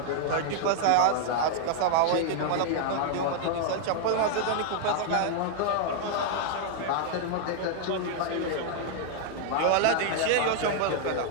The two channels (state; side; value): different; both; correlation 0.00